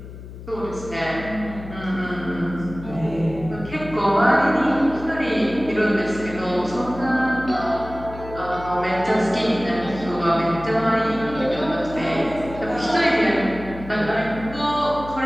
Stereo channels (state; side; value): noise; left; hum, 13 dB below the sound